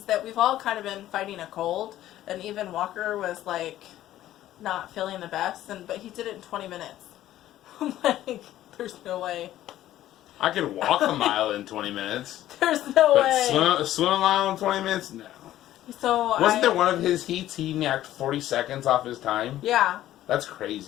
that we've all kind of been fighting a cold, and even Walker was like not feeling the best, but he did it in 20 minutes. I'm like, there's no way. I could walk a mile in 20 minutes. There's no way. But swim a mile in 20 minutes? No. So Wasn't there one of his heats he knocked 40 seconds off his time? Yeah. That's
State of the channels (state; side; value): quieter; right; 13.5 dB